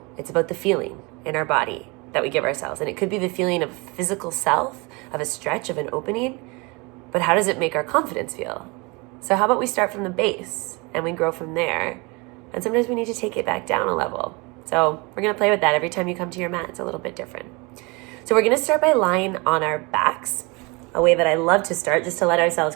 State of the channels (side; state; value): left; quieter; 27.6 dB